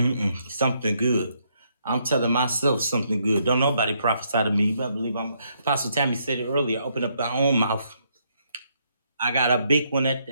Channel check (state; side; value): inverted; both; correlation -0.74